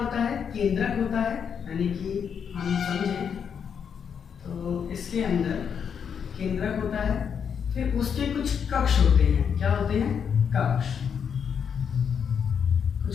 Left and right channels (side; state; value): right; quieter; 7.2 dB